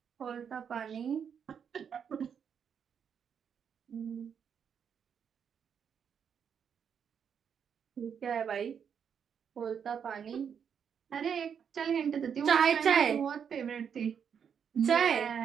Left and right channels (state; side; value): quieter; left; 7.5 dB